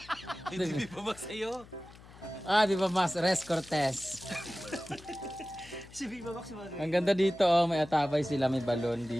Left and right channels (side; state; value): left; noise; hum, 20 dB below the sound